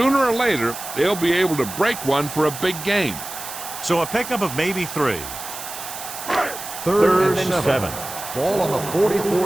or later, they'll be able to break one for a big gain. So a pickup of maybe 3. Third and 7. Ball on the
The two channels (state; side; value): noise; right; hiss, 10 dB below the sound